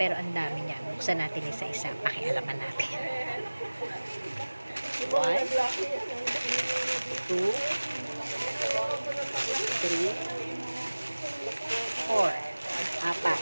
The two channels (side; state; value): both; inverted; correlation -1.00